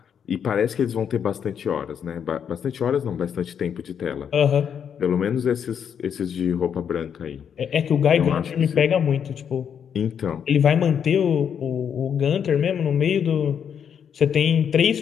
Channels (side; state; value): right; quieter; 7.9 dB